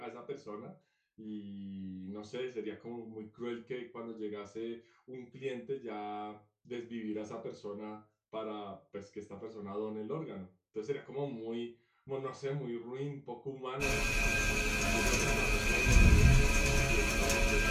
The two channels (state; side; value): identical; both; correlation 1.00